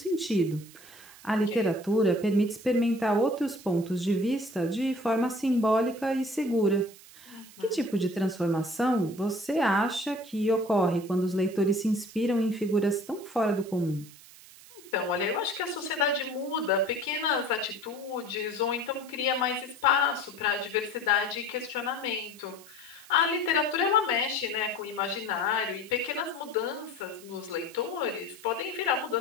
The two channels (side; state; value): right; noise; hiss, 21 dB below the sound